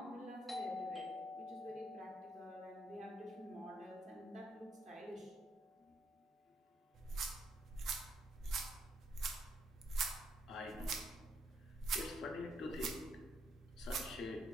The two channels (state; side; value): normal; both; correlation 0.74